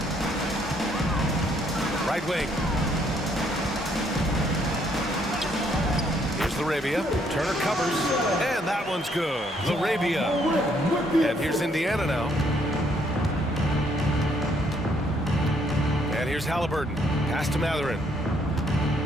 Right wing. Here's Laravia. Turner covers. And that one's good. Laravia. And here's Indiana now. And here's Halliburton. Pass to Mathurin.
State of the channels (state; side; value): normal; both; correlation 0.69